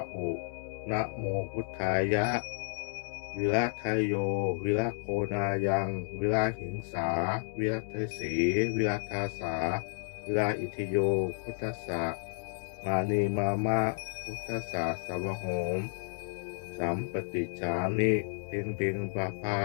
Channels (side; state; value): right; silent; digital silence